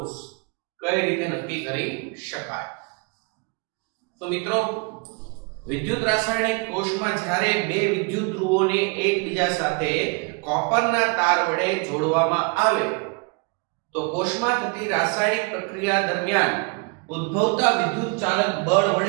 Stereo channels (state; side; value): quieter; left; 31.7 dB